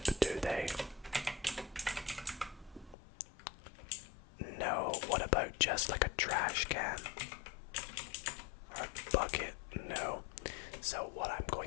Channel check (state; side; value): drops out; right; at 3.0 s